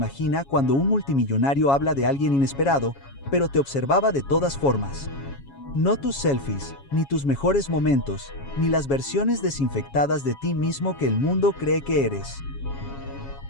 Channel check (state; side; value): late; right; 7.2 ms